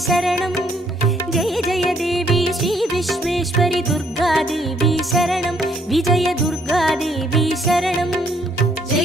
शरणं जय जय देवी श्री विश्वेश्वरि दुर्गादेवी शरणं विजय दुर्गादेवी शरणं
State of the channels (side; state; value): both; normal; correlation 0.67